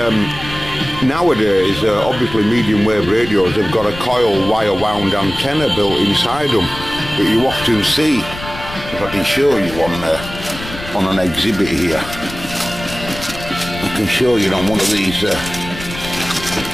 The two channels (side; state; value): left; noise; rumble, 12 dB below the sound